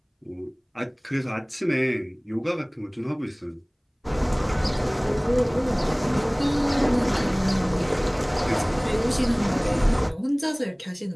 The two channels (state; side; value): identical; both; correlation 1.00